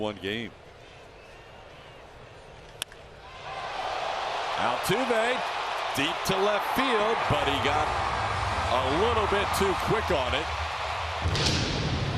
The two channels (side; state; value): both; identical; correlation 1.00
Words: game. Altuve deep to left field, but he got a little bit too quick on it.